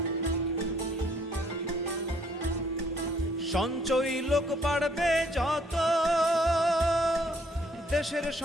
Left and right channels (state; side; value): normal; both; correlation 0.64